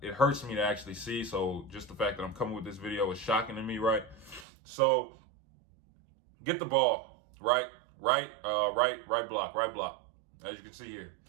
it hurts me to actually see. So just the fact that I'm coming with this video is shocking to me, right? So get the ball, right block, as you can see here.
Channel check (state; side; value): drops out; left; at 4.5 s